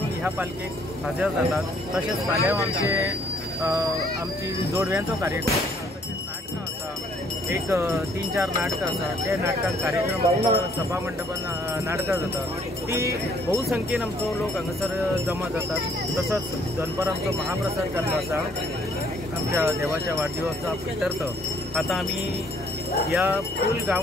ह्या पालखेक हजर जातात। तशेंच फाल्यां आमची जोडव्यांचो कार्यक्रम तशेंच नाटकां आसा एक 3-4 नाटकां आसा त्या नाटकांत कार्यक्रम सभा मंडपान नाटकां जातात ती बहुसंख्येन आमचो लोक हांगासर जमा जातात। तसोच दनपार आमचो महाप्रसाद जाल्लो आसा आमच्या देवाच्या वाढदिवसाच्या प्रित्यर्थ। आता आमी या फूल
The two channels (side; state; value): both; normal; correlation 0.64